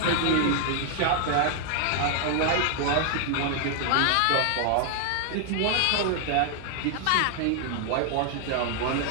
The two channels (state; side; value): different; both; correlation 0.00